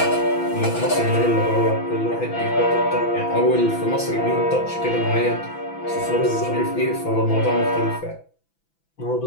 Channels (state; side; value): late; right; 6.0 ms